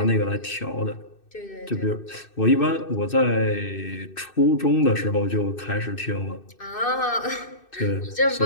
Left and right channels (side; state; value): right; late; 2.6 ms